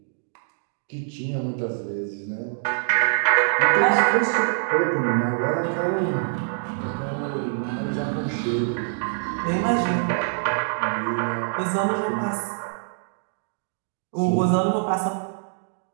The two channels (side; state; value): left; silent; digital silence